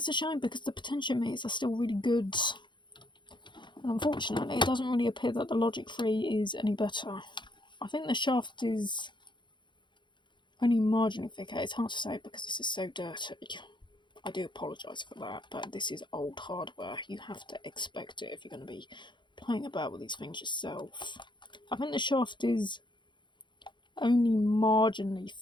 a shame because the potentiometers are still really good. And unfortunately, it doesn't really appear that the Logic 3 is any better. I think the shaft is only marginally thicker. It's hard to say because this is so dirty. I do apologise for that, but this is old hardware. You have to expect it if you're going to be playing about with these things yourself. I think the shaft is only marginally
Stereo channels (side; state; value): right; late; 0.23 ms